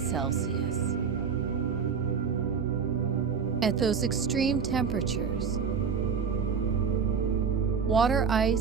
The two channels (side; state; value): left; quieter; 6.2 dB